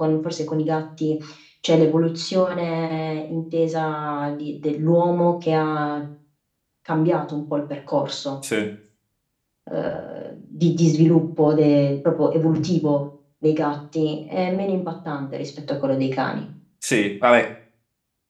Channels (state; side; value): identical; both; correlation 1.00